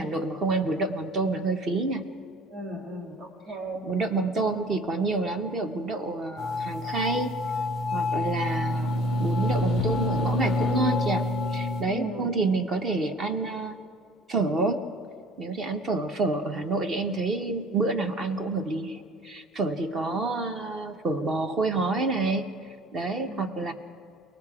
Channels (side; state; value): both; normal; correlation 0.48